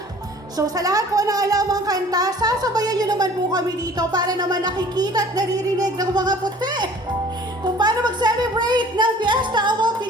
So sa lahat po na alam ang kanta, sasabayan nyo naman po kami dito para naman nakikita at naririnig ng mga puti kung paano mag-celebrate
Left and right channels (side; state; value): both; normal; correlation 0.49